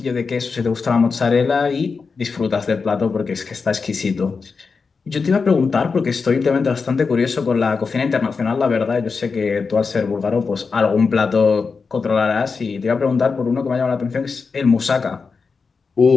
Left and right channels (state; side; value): quieter; right; 4.9 dB